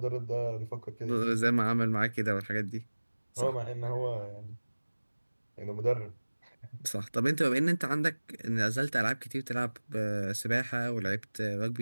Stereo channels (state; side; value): inverted; both; correlation -1.00